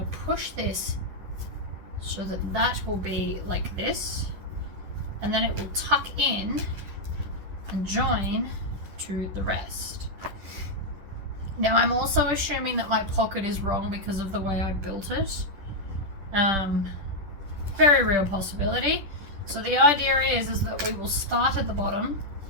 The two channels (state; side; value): late; left; 10 ms